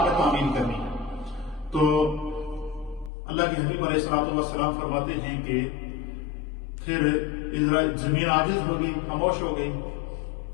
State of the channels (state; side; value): drops out; right; at 3.1 s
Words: میں تعمیل کرنی ہے۔ تو اللہ کے حبیب علیہ الصلوۃ والسلام فرماتے ہیں کہ پھر زمین عاجز ہو گئی، خاموش ہو گئی۔